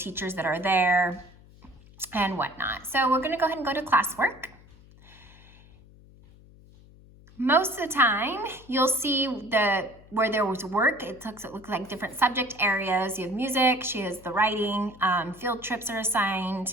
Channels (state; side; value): noise; left; hum, 24 dB below the sound